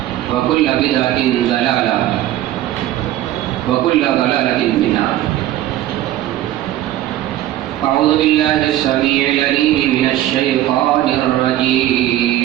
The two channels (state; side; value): quieter; left; 13.7 dB